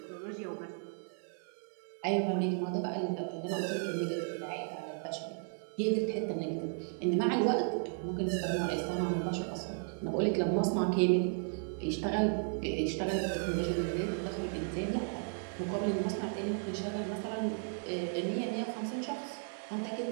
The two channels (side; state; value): left; silent; 55 dB below the other